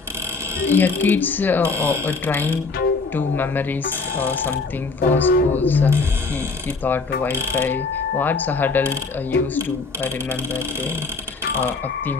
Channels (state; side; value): quieter; right; 4.2 dB